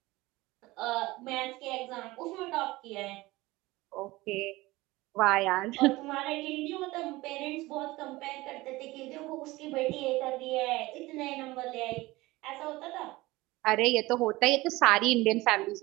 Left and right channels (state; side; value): quieter; left; 19.9 dB